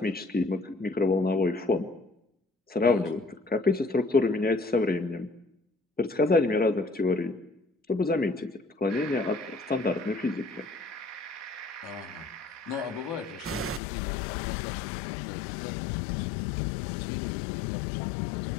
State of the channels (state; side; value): drops out; right; at 13.8 s